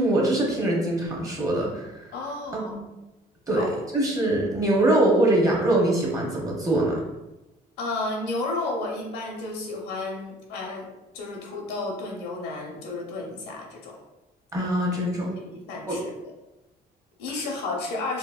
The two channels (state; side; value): normal; both; correlation 0.53